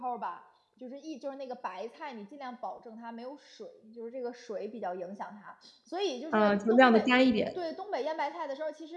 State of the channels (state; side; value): identical; both; correlation 1.00